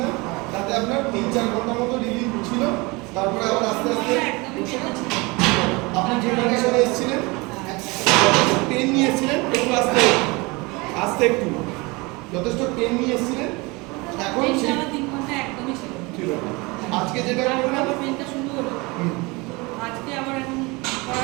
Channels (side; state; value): left; quieter; 25.4 dB